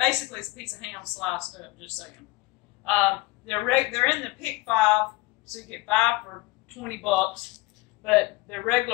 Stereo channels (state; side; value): quieter; right; 22.5 dB